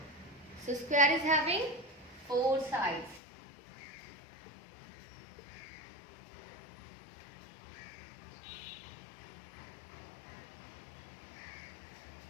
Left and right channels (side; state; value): right; drops out; at 3.2 s